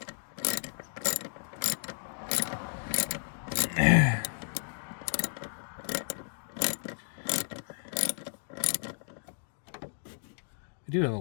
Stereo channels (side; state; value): right; silent; digital silence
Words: I do have a